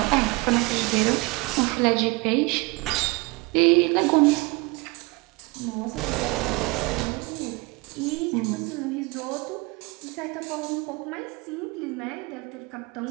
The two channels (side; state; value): left; quieter; 25.1 dB